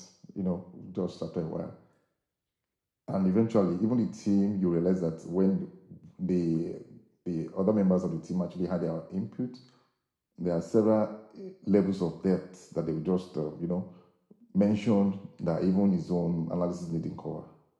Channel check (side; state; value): both; identical; correlation 1.00